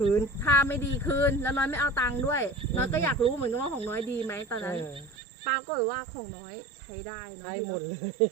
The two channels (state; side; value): drops out; left; at 5.2 s